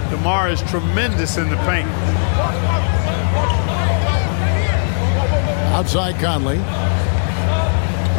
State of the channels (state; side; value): silent; right; digital silence